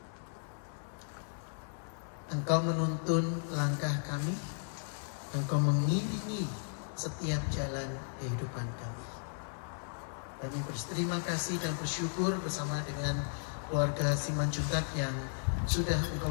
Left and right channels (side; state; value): right; silent; 54 dB below the other